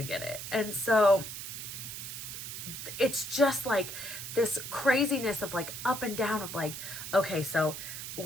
get it. And so it's just like this craziness of like up and down of like, okay, so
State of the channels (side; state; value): right; noise; hiss, 8 dB below the sound